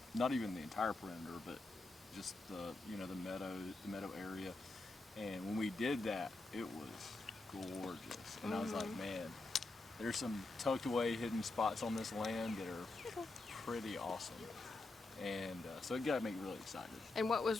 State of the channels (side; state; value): right; quieter; 3.1 dB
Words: not even the entire perimeter, but just the meadow area. And when we did that, it was gorgeous. And I was like, man, there's some tucked away hidden spots on this land that are pretty awesome. And so it got me really excited. And what